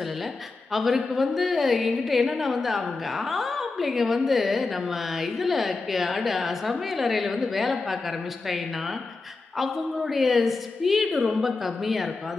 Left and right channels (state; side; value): quieter; right; 3.8 dB